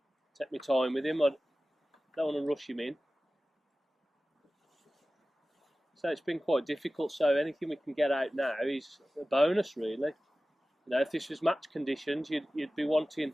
Take my time with him. I don't want to rush him in. So it's been quite difficult. So anything we can get out now is a bonus, really. If this was match conditions, you'd be wanting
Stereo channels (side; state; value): both; normal; correlation 0.96